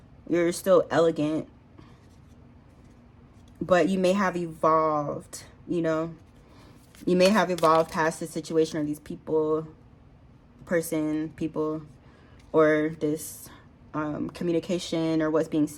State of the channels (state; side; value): identical; both; correlation 1.00